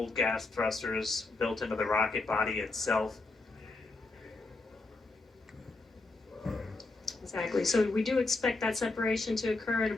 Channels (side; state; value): right; quieter; 3.4 dB